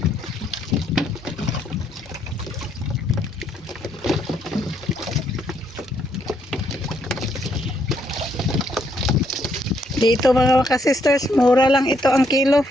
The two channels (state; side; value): normal; both; correlation 0.73